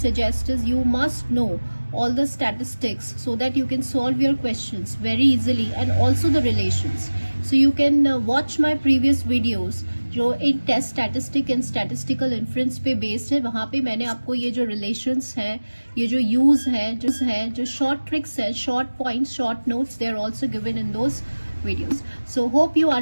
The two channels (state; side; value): inverted; both; correlation -1.00